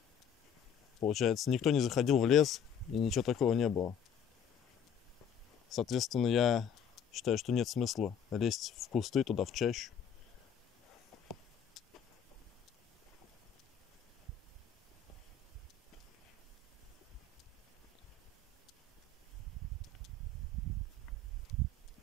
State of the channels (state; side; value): quieter; right; 6.6 dB